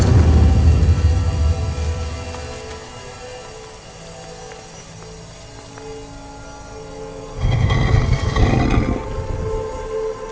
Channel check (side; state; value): both; identical; correlation 1.00